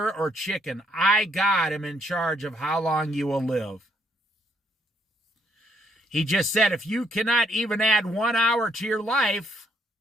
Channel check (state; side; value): normal; both; correlation 0.70